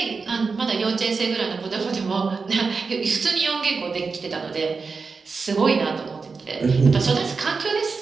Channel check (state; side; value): quieter; left; 4.7 dB